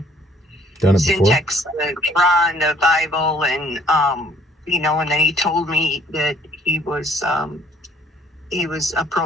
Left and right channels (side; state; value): both; normal; correlation 0.60